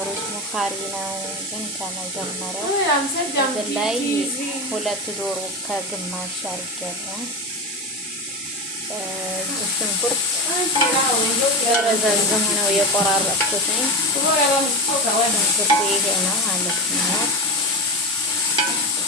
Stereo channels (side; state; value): both; normal; correlation 0.21